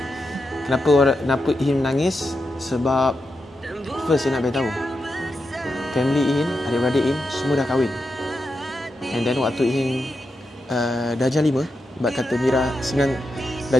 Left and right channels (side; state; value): both; normal; correlation 0.87